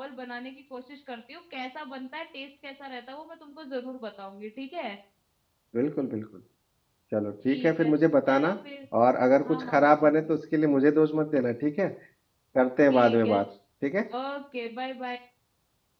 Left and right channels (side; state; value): both; identical; correlation 1.00